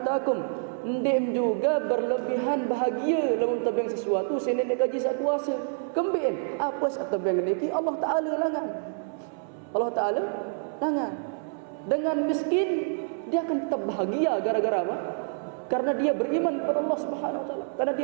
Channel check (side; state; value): left; silent; 60 dB below the other